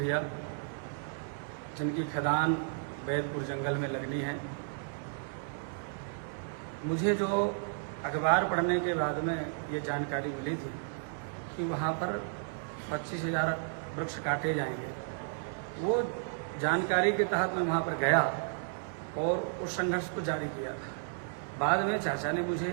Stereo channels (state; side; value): silent; left; 56 dB below the other